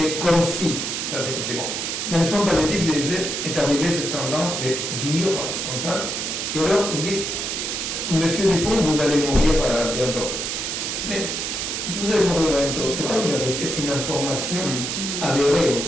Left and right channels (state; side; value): noise; right; hiss, 3 dB below the sound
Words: comme si. Ça, c'est comme si. Bon. Dans le soin palliatif, je disais, est arrivée cette tendance de dire comme ça. Et alors, ils disent Monsieur Dupont, vous allez mourir bientôt. Mais vous allez mourir bientôt. C'est pas une vérité, c'est une information avérée, on